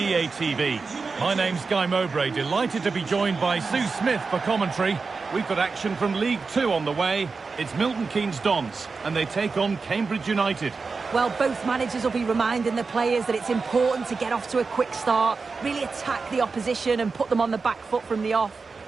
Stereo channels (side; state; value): left; quieter; 4.5 dB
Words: TV. My name's Guy Mowbray, delighted to be joined by Sue Smith for commentary. We've got action from League Two on the way. It's Milton Keynes Dons and they take on Cambridge United. Well, both managers will be reminding the players that it's important to get off to a quick start, really attack the opposition and put them on the back foot from the off.